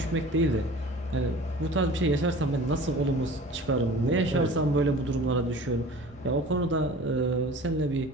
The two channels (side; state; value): both; normal; correlation 0.42